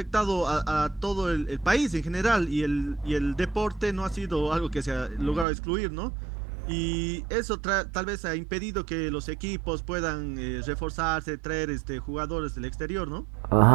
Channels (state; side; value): drops out; left; at 5.5 s